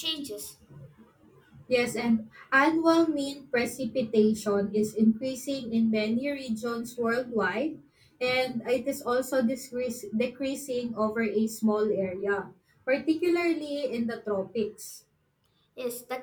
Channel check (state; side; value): identical; both; correlation 1.00